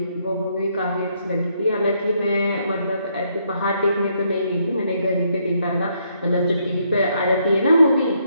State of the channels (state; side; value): inverted; both; correlation -0.73